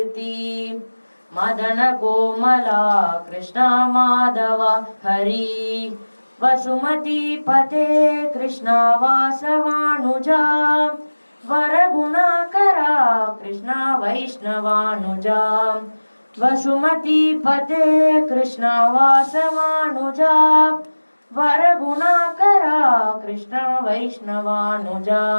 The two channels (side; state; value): both; inverted; correlation -1.00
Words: मदन कोमला कृष्णा माधवा हरि वसुमती पते कृष्णा वासवानुजा वरगुणाकरा कृष्णा वैष्णवानुजा वसुमती पते कृष्णा वासवानुजा वरगुणाकरा कृष्णा वैष्णवानुजा